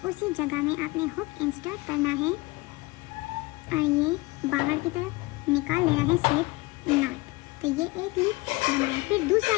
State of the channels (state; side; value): quieter; right; 22.4 dB